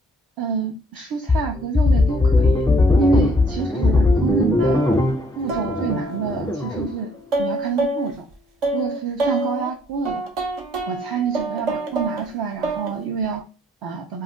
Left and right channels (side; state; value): both; normal; correlation 0.65